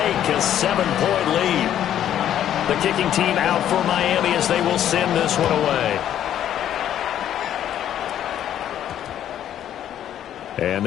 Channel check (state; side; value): quieter; right; 10.8 dB